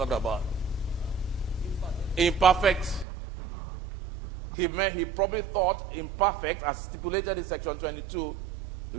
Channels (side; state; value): left; drops out; at 3.1 s